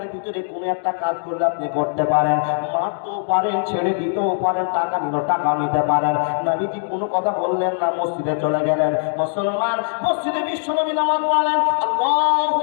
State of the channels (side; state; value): right; silent; digital silence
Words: ভিতরে কোনো একটা কাজ করলে আপনি করতে পারেন, মারতেও পারেন, ছেড়ে দিতেও পারেন, টাকা নিলেও টাকা নিতে পারেন। নবীজি কোনো কথা বললেন না, মসজিদে চলে গেলেন। মুসলমান মসজিদে বিশ্বনবী নামাজ পড়লেন, আল্লাহু